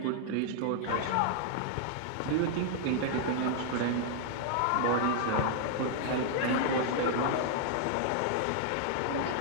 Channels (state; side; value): different; both; correlation -0.01